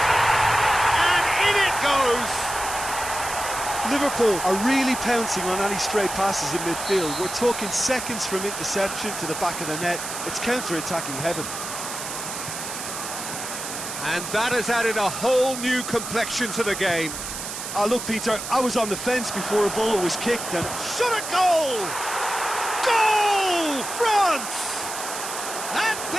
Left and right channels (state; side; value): noise; right; hiss, 7 dB below the sound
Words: And in it goes! Liverpool are really pouncing on any stray passes in midfield. We're talking seconds from interception to the back of the net. It's counter-attacking heaven. And that has added a whole new complexion to the game. Look, Peter, I was on the fence before a ball was kicked and... Shot a goal! Goal! France! And